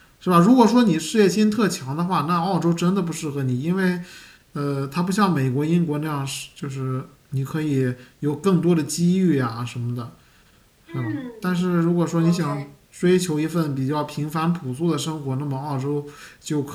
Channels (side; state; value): both; identical; correlation 1.00